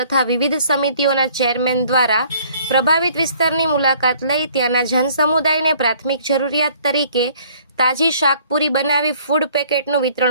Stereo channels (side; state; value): both; inverted; correlation -0.57